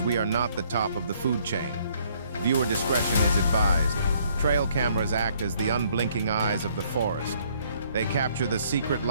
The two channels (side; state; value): both; inverted; correlation -0.65